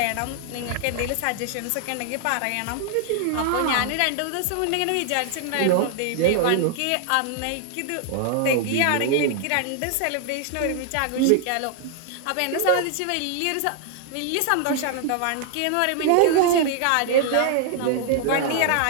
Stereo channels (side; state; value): both; different; correlation 0.00